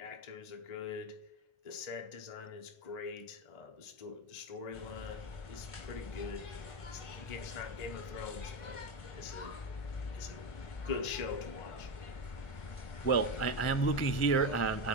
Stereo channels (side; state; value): right; late; 1.4 ms